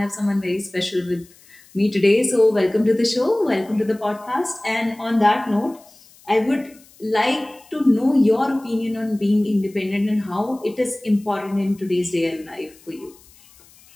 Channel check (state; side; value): noise; left; hiss, 26 dB below the sound